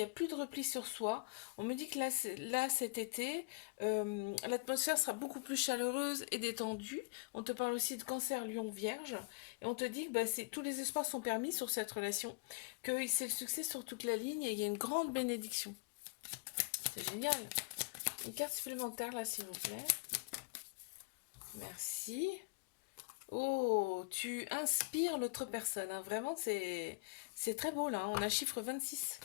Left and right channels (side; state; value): right; quieter; 31.9 dB